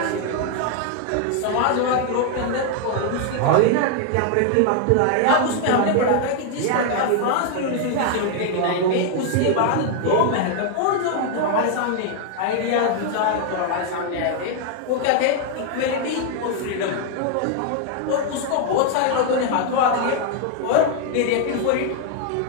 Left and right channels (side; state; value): both; different; correlation 0.00